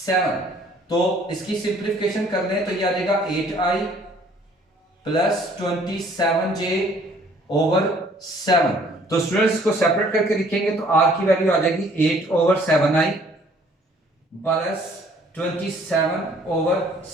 तो इसकी सिंप्लीफिकेशन कर लें तो यह आ जाएगा 8i प्लस 27j ओवर 7। तो स्टूडेंट्स इसको सेपरेट करके लिखेंगे तो r की वैल्यू आ जाएगी 8 over 7i plus 27 over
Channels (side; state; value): both; normal; correlation 0.58